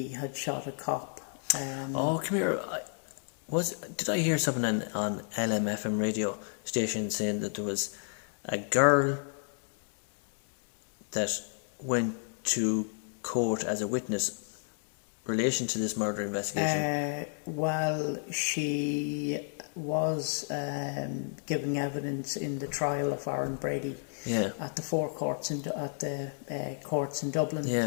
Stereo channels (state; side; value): silent; right; 56 dB below the other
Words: had shot a cop. Come here. Did I hear something on LMFM radio station saying that there was a girl that went to court as a witness relation to this murder investigation? Well, she was giving evidence in the trial of Aaron Brady at the courts in